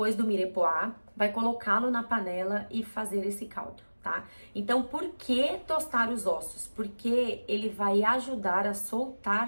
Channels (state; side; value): inverted; both; correlation -1.00